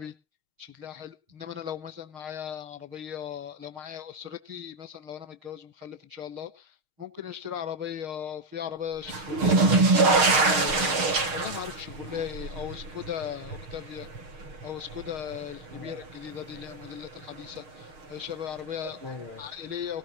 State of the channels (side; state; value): left; late; 6.5 ms